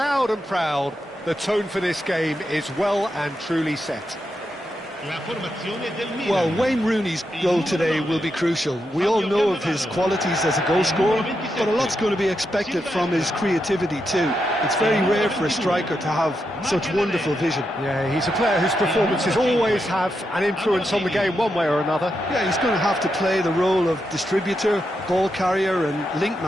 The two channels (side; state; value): both; normal; correlation 0.85